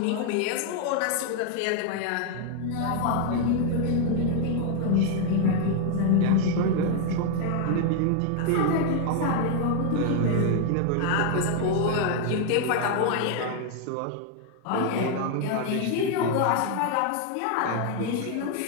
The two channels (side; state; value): both; different; correlation 0.00